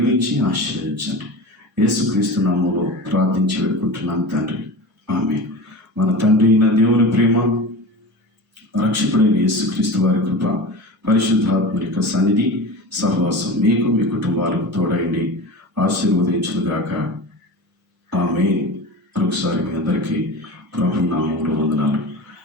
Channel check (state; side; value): normal; both; correlation 0.31